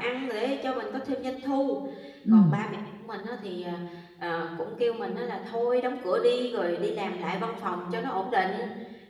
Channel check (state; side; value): identical; both; correlation 1.00